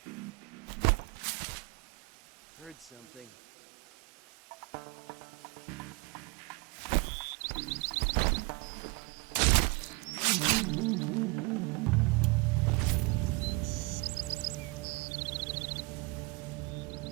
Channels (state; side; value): quieter; left; 26.8 dB